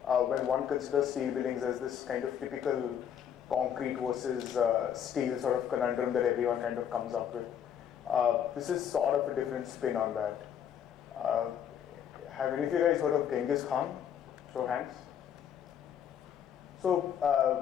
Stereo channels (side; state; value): right; quieter; 8.9 dB